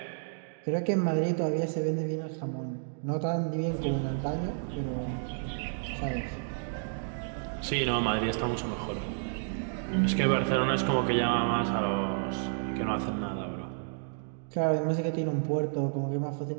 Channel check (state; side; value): silent; left; digital silence